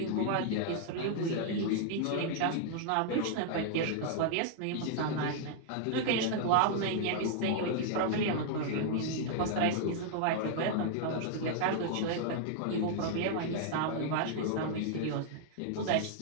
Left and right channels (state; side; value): different; both; correlation -0.01